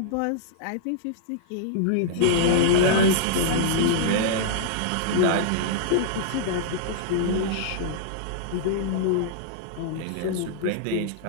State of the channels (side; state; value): both; different; correlation -0.02